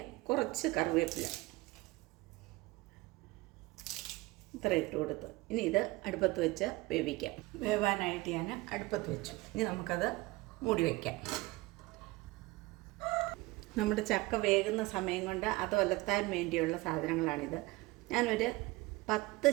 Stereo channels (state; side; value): quieter; left; 21.3 dB